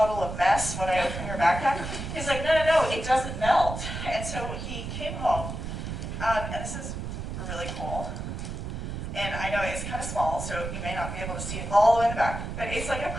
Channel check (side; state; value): right; noise; rumble, 6 dB below the sound